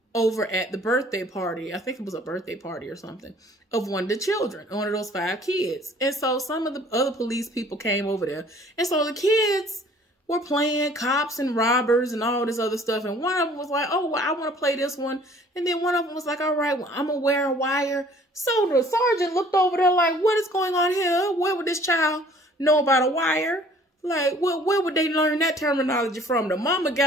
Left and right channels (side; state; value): both; normal; correlation 0.54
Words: over at the birthday party. I think it was a birthday party or something of one of the children, one of those 5 kids. And so some of the other police people came over there. And so the kids were playing cops and robbers and all this other stuff. And one of them was like, oh, well, I want to play this one. And then one of them was like, all right, well, I'm going to wear a wire. So the sergeant looked over there like, what is going on here? Where would this child know about a wire? Like, where would they learn that terminology from? The mama